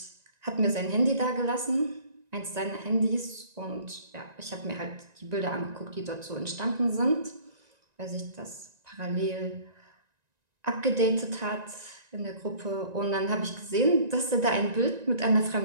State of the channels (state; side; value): late; left; 1.9 ms